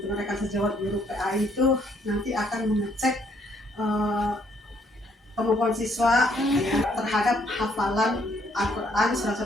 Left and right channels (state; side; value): normal; both; correlation 0.68